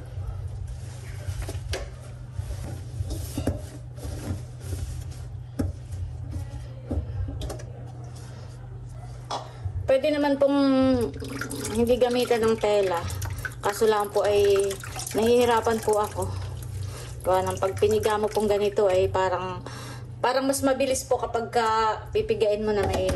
Pwede naman pong hindi gamitan ng tela. Kaso lang po ay nahihirapan po ako. Gawa ng pag piniga mo pong ganito ay parang mas mabilis po kapag pipigain mo na may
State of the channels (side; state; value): both; identical; correlation 1.00